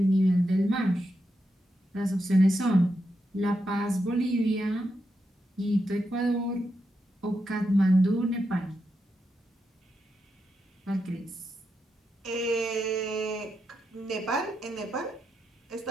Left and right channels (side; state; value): both; normal; correlation 0.85